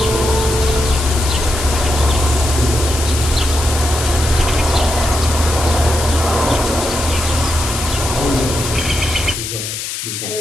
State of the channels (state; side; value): noise; left; hiss, 6 dB below the sound